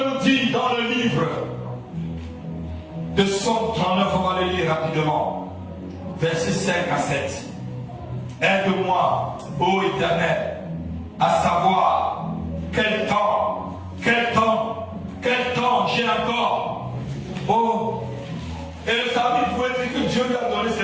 nous dit dans le livre de Psaume 39, on va le lire rapidement, versets 5 à 7. Aide-moi, ô Éternel, à savoir quel temps j'ai encore. Oh, et le sabbat, il faut dire que Dieu lui a donné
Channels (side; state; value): both; identical; correlation 1.00